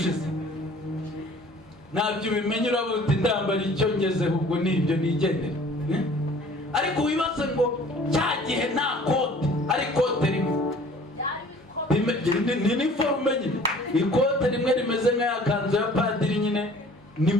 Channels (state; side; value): normal; both; correlation 0.51